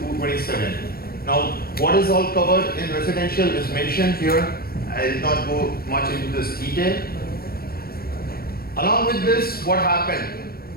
Now what is all covered in residential is mentioned here. I will not go much into this detail. Along with this, what happened?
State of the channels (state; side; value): late; right; 0.44 ms